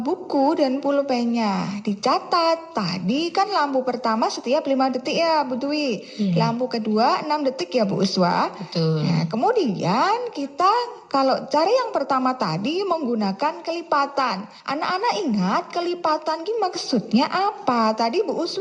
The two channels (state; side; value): identical; both; correlation 1.00